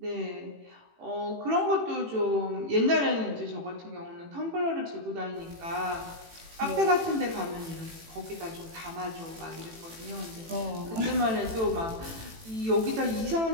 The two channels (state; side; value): late; left; 18 ms